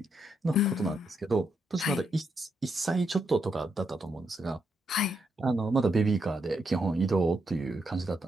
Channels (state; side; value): normal; both; correlation 0.80